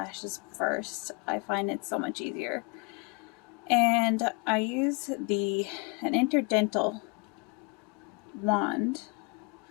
first. I find it so much easier. And I use an interdental wand.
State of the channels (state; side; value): quieter; right; 31.3 dB